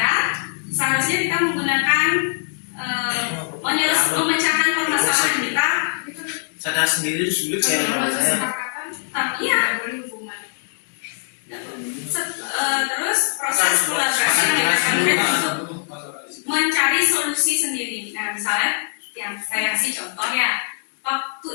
seharusnya kita menggunakan memecahkan permasalahan kita. Sadar sendiri itu sulit ya kalau saya. Iya. Terus proses kolaborasi yang dilakukan untuk mencari solusi sendiri. Nah, misalnya yang saya kasih contoh ya, waktu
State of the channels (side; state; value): right; silent; digital silence